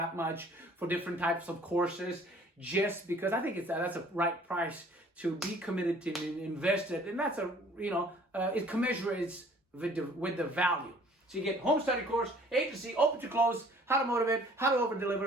much for different types of courses, just because I think that's a right price to be committed to invest it, and that's it commensurates with the value. So you get home study course, agency, open to close, how to motivate, how to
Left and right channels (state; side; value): normal; both; correlation 0.54